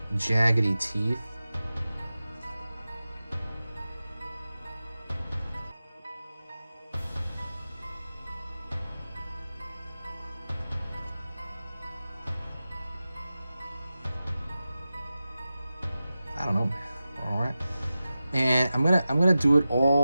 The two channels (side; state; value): both; inverted; correlation -0.94